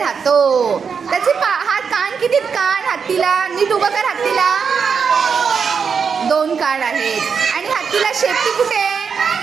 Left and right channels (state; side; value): quieter; left; 6.1 dB